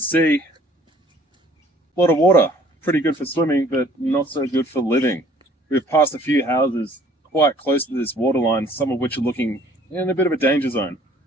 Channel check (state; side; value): normal; both; correlation 0.56